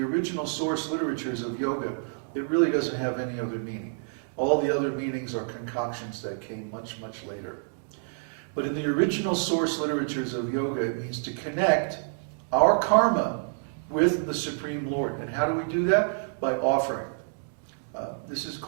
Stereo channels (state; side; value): silent; left; digital silence